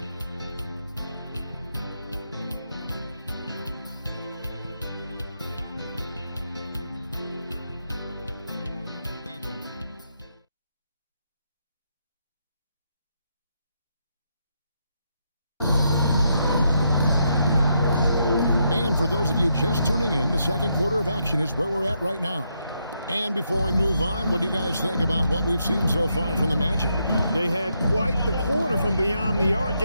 For those of you just tuning in, the second quarter of action is where we're at right now. And before we move on, what do you guys think about what we've seen so far from the Magic? They had quite the quarter from beyond the arc,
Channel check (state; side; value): inverted; both; correlation -0.80